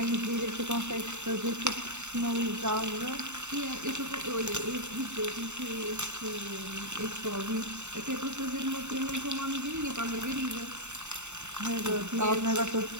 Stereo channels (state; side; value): late; left; 0.83 ms